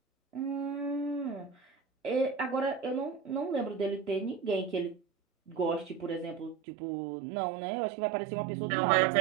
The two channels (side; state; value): left; drops out; at 6.6 s